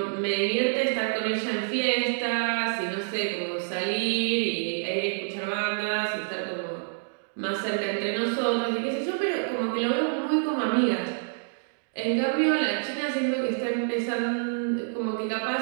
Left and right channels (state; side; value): silent; left; digital silence